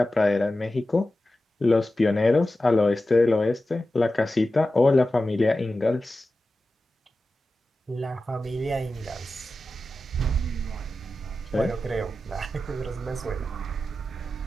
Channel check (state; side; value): normal; both; correlation 0.93